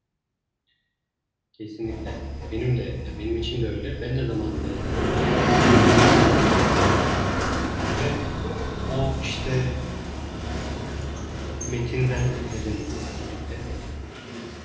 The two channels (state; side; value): identical; both; correlation 1.00